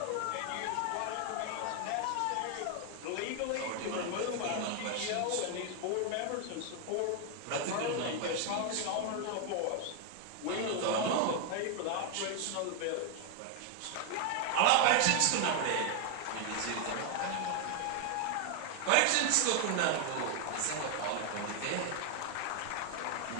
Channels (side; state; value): both; different; correlation 0.00